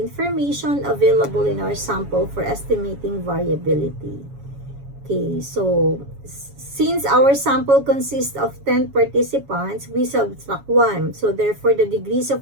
available in our sample for estimating variability. Okay, so since our sample consists of 10 participants, we subtract 1. So therefore, the degrees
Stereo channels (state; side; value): late; left; 7.2 ms